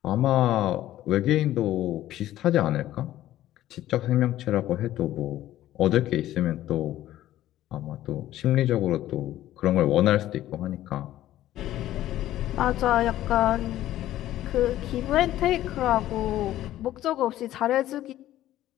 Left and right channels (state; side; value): quieter; right; 13.7 dB